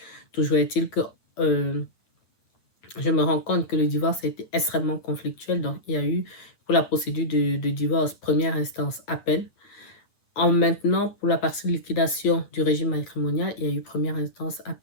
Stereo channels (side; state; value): right; late; 9.3 ms